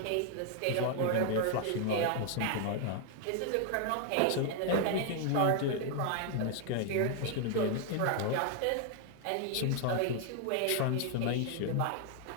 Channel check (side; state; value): both; different; correlation 0.00